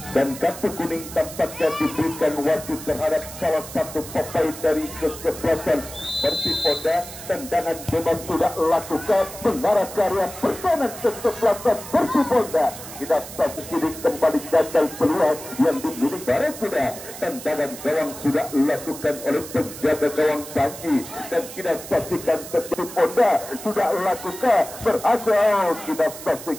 dan kartu kuning tampaknya diberikan wasit terhadap salah satu pemain dari kesebelasan Persipura. Tendangan bebas sudah lakukan mengarah karya pertahanan kesebelasan Persipura. Kita saksikan kembali gagal peluang yang dimiliki Barakuda. Tendangan gawang sudah dilakukan oleh penjaga gawang Panji dan kita saksikan Persipura sudah lakukan berhasil. Kita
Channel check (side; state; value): right; noise; hiss, 13 dB below the sound